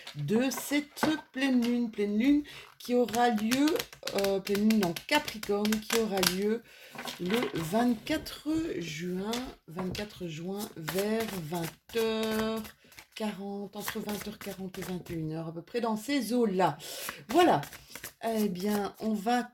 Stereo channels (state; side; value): identical; both; correlation 1.00